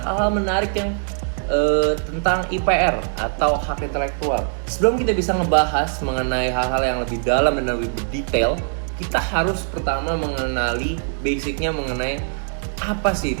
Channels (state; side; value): silent; left; digital silence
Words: menarik yang tentang IPR atau hak intelektual. Sebelum kita bisa ngebahas mengenai hal-hal yang lebih dalam dan lebih berdetail, kita harus pertama mengenali basicnya mengenai apa sih